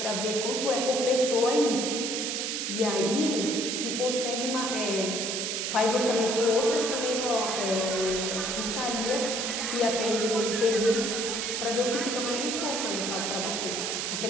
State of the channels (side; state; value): right; noise; hiss, 1 dB below the sound